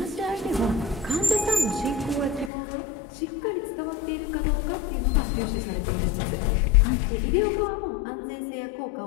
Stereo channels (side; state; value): right; drops out; at 2.5 s